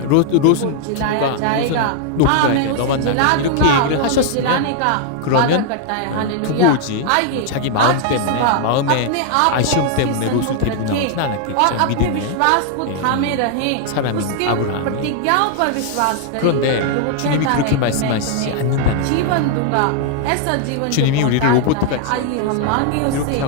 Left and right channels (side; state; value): both; different; correlation 0.00